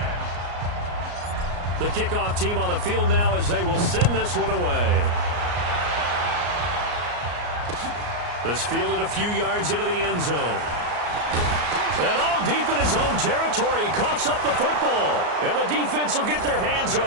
The kickoff team on the field now as they will send this one away. This fielded a few yards into the end zone. And all deep in his own territory, he coughs up the football. And the defense will get their hands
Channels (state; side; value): late; left; 34 ms